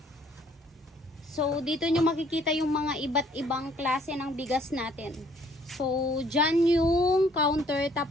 So, dito nyo makikita yung mga iba't ibang klase ng bigas natin. So, dyan yung counter,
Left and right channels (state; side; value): normal; both; correlation 0.62